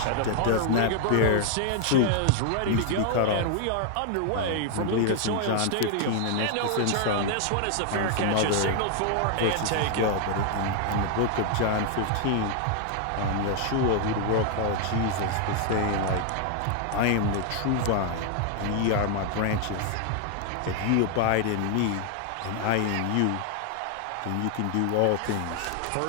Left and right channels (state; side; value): different; both; correlation 0.00